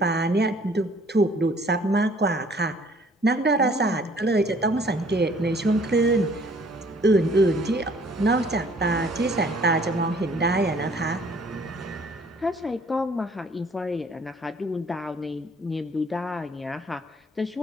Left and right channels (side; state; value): both; normal; correlation 0.58